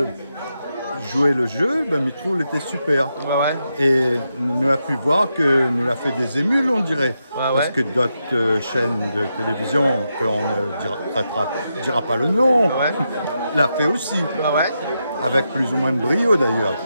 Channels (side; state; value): both; inverted; correlation -0.85